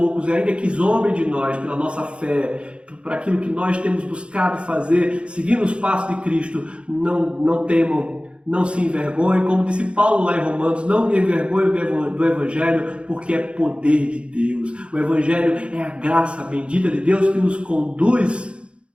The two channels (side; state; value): left; late; 0.058 ms